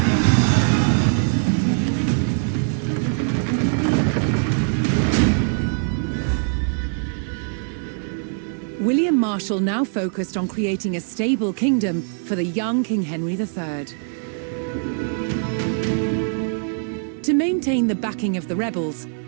William Marshal now focused on creating a stable kingdom for the young King Henry III. To maintain the backing of the rebels,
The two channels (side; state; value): left; silent; 64 dB below the other